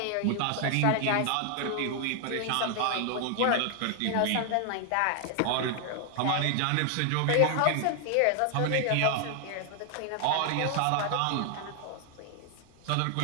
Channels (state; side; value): different; both; correlation 0.00